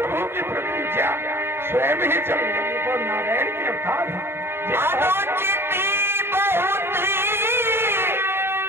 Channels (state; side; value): late; left; 0.11 ms